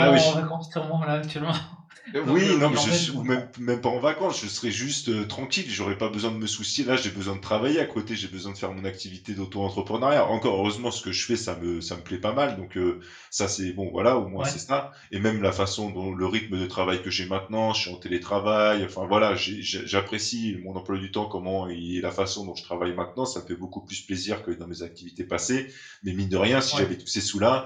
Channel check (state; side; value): identical; both; correlation 1.00